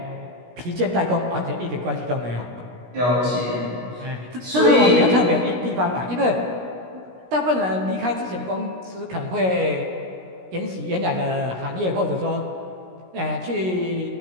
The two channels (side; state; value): left; late; 16 ms